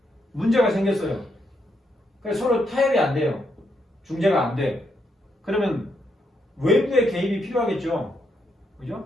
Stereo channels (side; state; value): both; normal; correlation 0.78